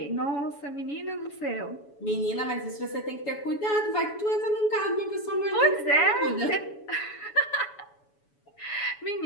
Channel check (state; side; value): late; right; 7.1 ms